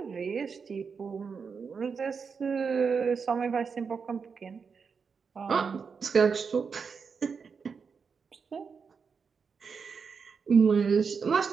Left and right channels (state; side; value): quieter; left; 5.7 dB